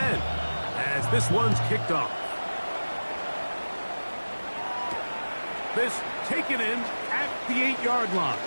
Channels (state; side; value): inverted; both; correlation -1.00